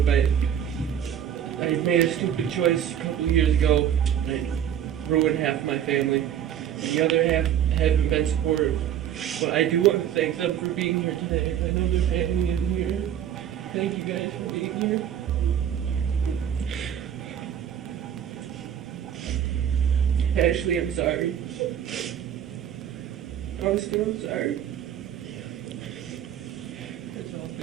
I made a stupid choice a couple of years ago. I ruined half of my family. The other half haven't been supportive. But I do want to thank them for being here today. I know their family isn't here. Thank you guys for being here. Ashley, I'm sorry. Austin, I'm sorry. That's all.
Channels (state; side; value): quieter; left; 9.7 dB